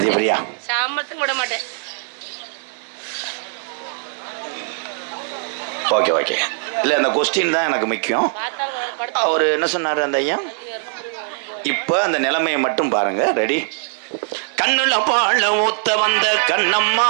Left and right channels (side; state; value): left; silent; 60 dB below the other